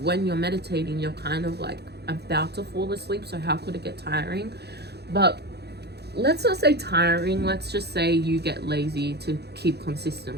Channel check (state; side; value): late; left; 0.48 ms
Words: when you're meditating you're kind of like about to fall asleep, so how could it get tiring? But let's not say tiring, let's just say you get lazy to keep consistent